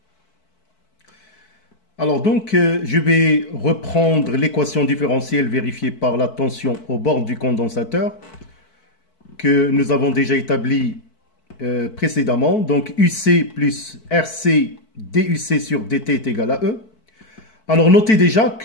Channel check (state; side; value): late; right; 4.6 ms